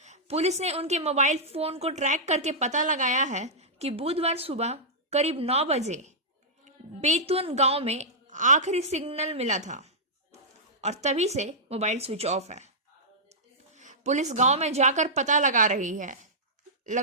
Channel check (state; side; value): normal; both; correlation -0.12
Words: पुलिस ने उनके मोबाइल फोन को ट्रैक करके पता लगाया है कि बुधवार सुबह करीब 9 बजे बेतुन गांव में आखिरी सिग्नल मिला था और तभी से मोबाइल स्विच ऑफ है। पुलिस गांव में जाकर पता लगा